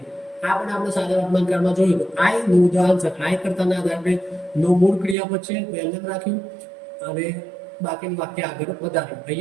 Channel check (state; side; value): drops out; left; at 5.2 s